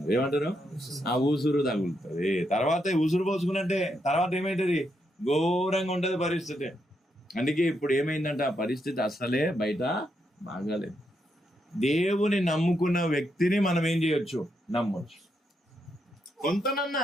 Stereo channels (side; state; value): both; normal; correlation 0.80